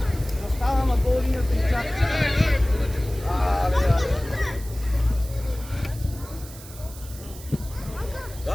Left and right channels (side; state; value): right; noise; hiss, 17 dB below the sound